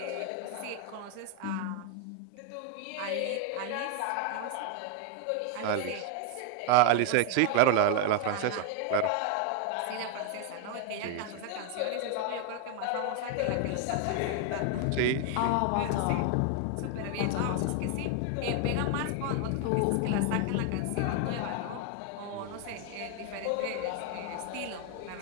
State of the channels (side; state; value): both; different; correlation 0.00